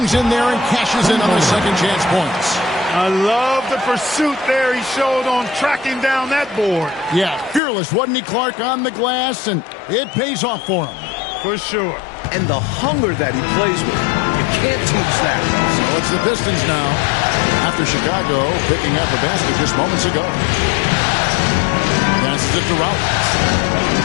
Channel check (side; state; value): right; drops out; at 7.6 s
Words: in there and cashes in on the second chance points. I love the pursuit there he showed on tracking down that board. Yeah, fearless, wasn't he, Clark, on the glass, and it pays off for him. For sure. And the hunger that he plays with. You can't teach that. So it's the Pistons now, after Chicago picking up a basket just moments ago. Passes it to Rollins.